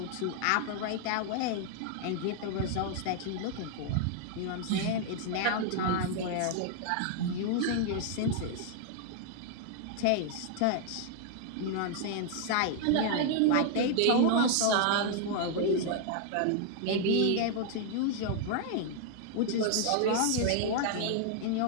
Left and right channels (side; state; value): both; different; correlation 0.00